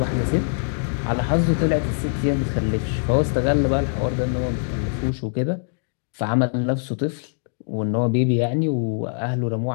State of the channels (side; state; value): right; silent; digital silence